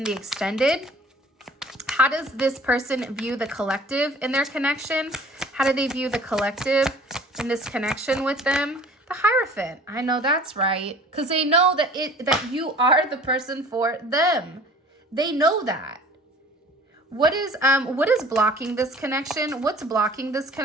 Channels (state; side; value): normal; both; correlation 0.48